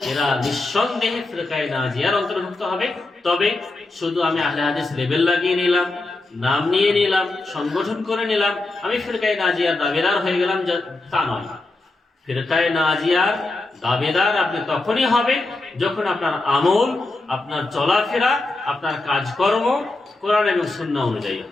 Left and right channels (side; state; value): right; quieter; 3.1 dB